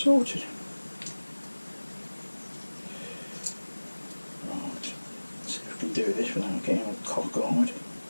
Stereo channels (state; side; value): inverted; both; correlation -1.00